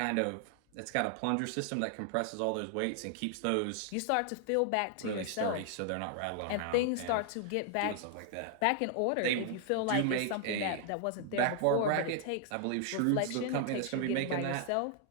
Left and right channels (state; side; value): different; both; correlation 0.00